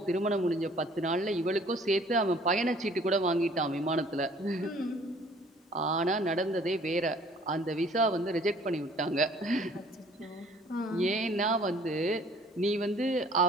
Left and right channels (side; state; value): both; normal; correlation 0.55